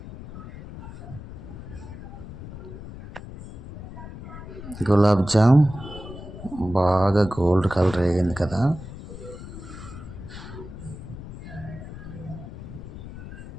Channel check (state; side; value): noise; left; rumble, 12 dB below the sound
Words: గులాబ్ జామ్ బాగా గోల్డ్ కలర్ వేగింది కదా.